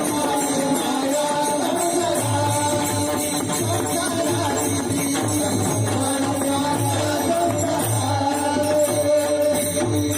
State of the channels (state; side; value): identical; both; correlation 1.00